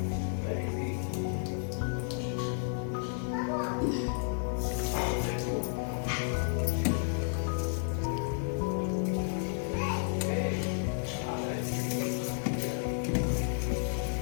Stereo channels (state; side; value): silent; right; digital silence